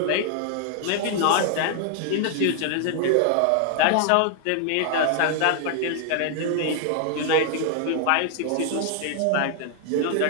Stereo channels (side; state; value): both; different; correlation 0.00